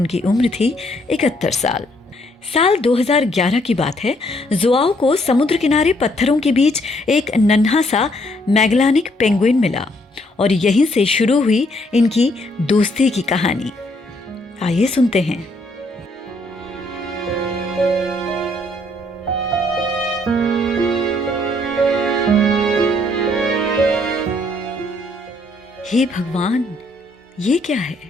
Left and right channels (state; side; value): normal; both; correlation 0.69